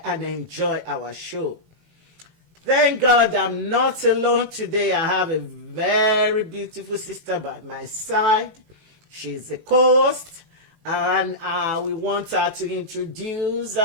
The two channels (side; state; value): left; late; 18 ms